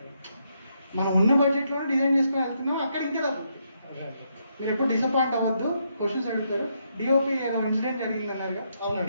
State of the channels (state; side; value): inverted; both; correlation -0.77